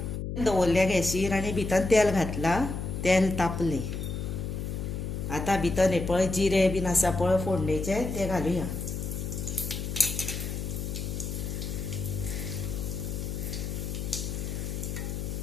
दवरल्या गॅसीर आनी भितर तेल घातला, तेल तापलें. आतां भितर हे पळय जिरें बीन आसा पळय फोडणेचें तें घालुया.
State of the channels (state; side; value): noise; left; hum, 4 dB below the sound